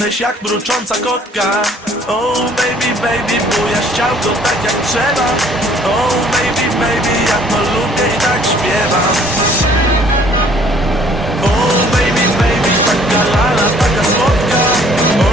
jak mrucząca kotka. Oh baby, baby, bujasz ciałko tak jak trzeba. Oh baby, baby, ja to lubię i tak śpiewam. Oh baby, baby, taka lala, taka słodka.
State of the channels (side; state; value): both; normal; correlation 0.58